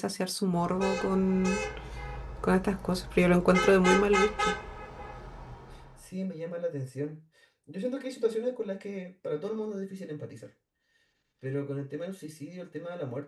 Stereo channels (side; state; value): both; identical; correlation 1.00